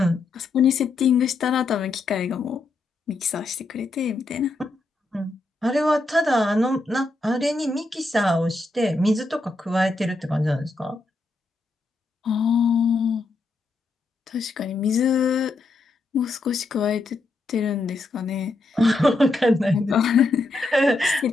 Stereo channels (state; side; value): quieter; right; 3.2 dB